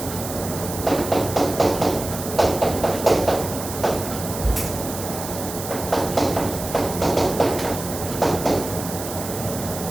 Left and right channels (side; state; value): right; noise; hiss, 9 dB below the sound